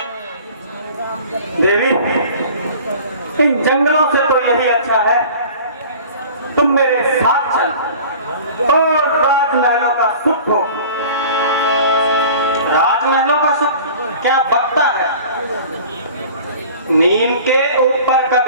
देवी, इन जंगलों से तो यही अच्छा है तुम मेरे साथ चल और राजमहलों का सुख हो। राजमहलों का सुख क्या बकता है? नीम के ऊपर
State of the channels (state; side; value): inverted; both; correlation -0.43